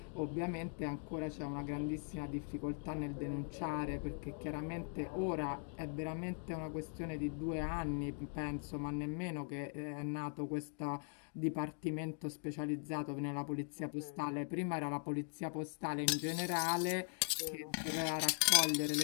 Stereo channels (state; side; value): silent; right; 51 dB below the other